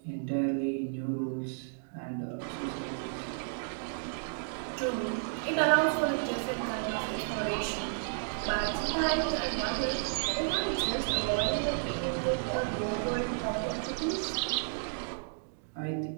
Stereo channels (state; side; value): silent; left; digital silence